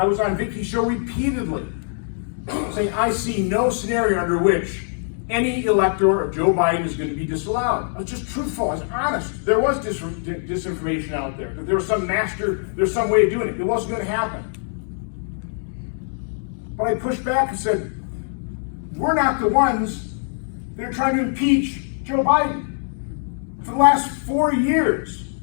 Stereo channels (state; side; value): silent; right; digital silence